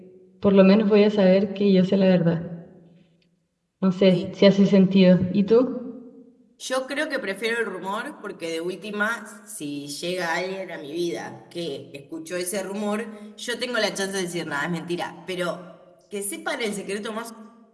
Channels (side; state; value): both; identical; correlation 1.00